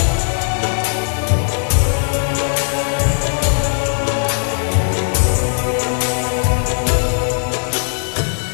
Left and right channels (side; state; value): right; silent; digital silence